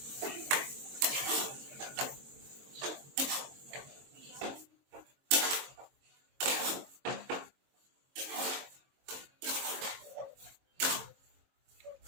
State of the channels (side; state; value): left; late; 22 ms